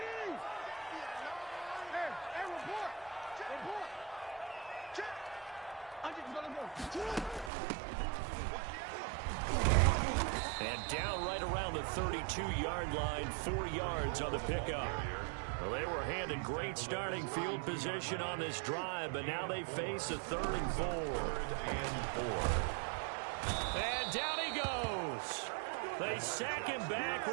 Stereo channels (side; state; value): left; drops out; at 7.5 s